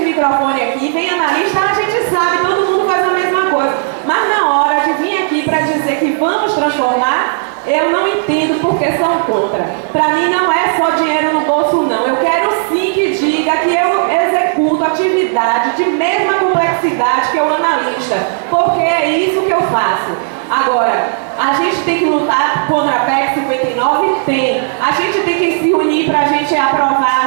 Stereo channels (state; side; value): silent; left; digital silence